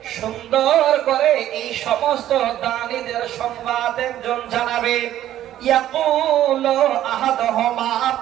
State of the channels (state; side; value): quieter; left; 12.5 dB